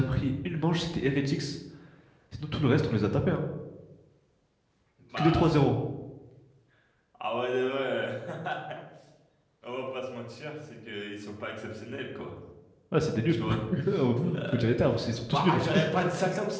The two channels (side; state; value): both; identical; correlation 1.00